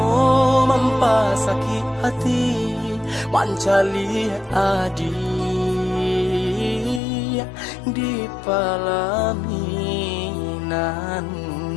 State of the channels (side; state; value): right; drops out; at 7.0 s